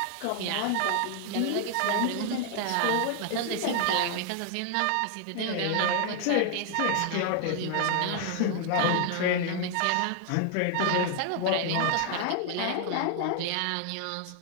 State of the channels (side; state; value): both; different; correlation 0.00